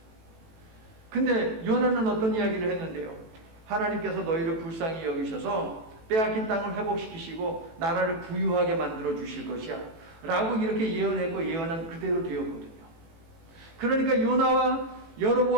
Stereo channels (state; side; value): late; left; 18 ms